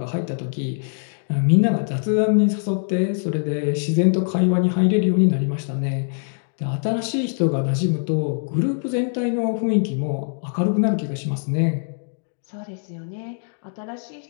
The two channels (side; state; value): right; silent; digital silence